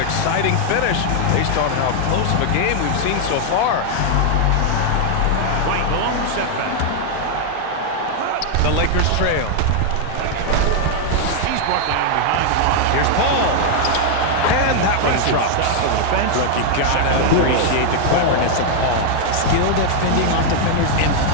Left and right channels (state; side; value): different; both; correlation 0.00